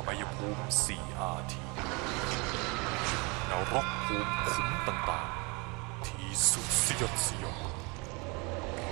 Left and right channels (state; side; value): quieter; left; 28.7 dB